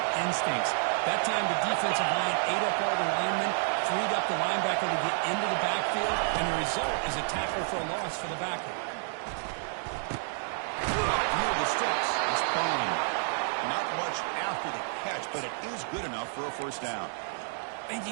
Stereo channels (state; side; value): silent; left; 58 dB below the other